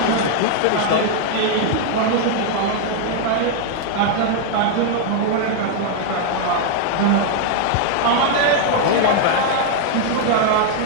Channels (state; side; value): different; both; correlation 0.00